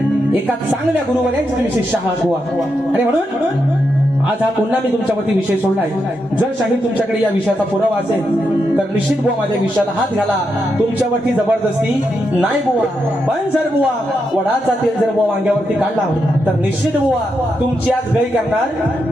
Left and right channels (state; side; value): normal; both; correlation 0.84